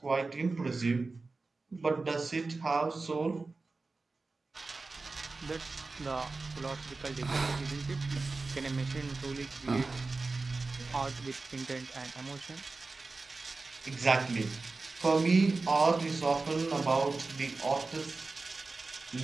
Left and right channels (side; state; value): left; quieter; 3.7 dB